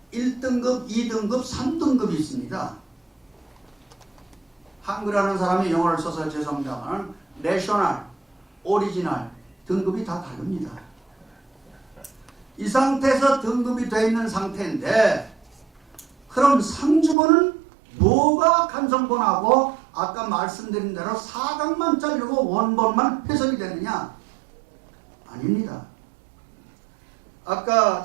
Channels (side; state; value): left; drops out; at 17.2 s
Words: 1등급, 2등급, 3등급이 있습니다. 한글하는 사람이 영어를 써서 죄송합니다만 내셔널, 오리지널 등급이 다 다릅니다. 이 상태에서 등급이 되어 있는 상태인데 그럼 상주본은 뭐가 간성본하고 아까 말씀드린 대로 사각만 자르고 원본만 훼손이 되느냐? 아닙니다. 아까